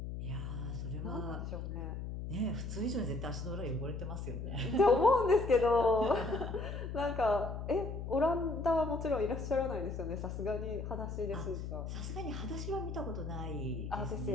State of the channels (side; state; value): left; noise; hum, 5 dB below the sound